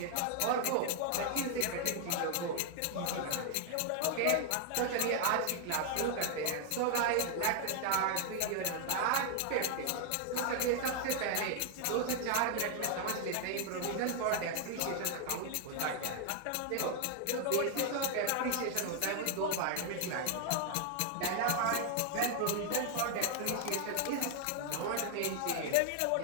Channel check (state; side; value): different; both; correlation 0.00